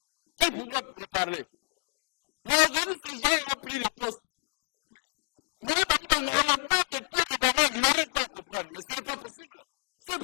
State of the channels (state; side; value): silent; right; digital silence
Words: Qui pouvait me parler? Mais aujourd'hui, ces gens ont pris les postes. Maintenant, on leur met des pots de bananes. Ils n'arrivent pas à comprendre. Mais ce n'est pas possible. Ce n'est